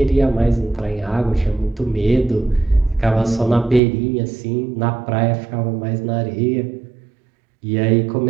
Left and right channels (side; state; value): left; drops out; at 3.8 s